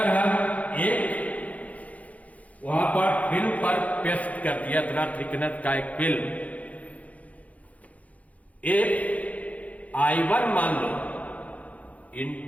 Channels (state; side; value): late; right; 0.069 ms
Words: हम एक वहां पर फिल्म पर पेस्ट कर दिया इतना थिकनेस का एक फिल्म, एक I1 मान लो